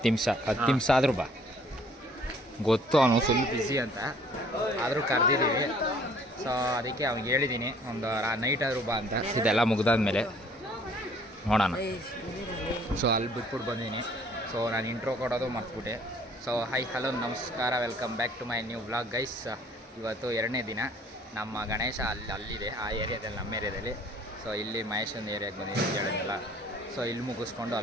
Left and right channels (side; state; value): both; normal; correlation 0.57